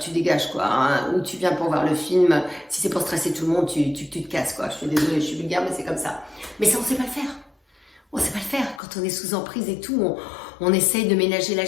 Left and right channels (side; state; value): right; drops out; at 8.8 s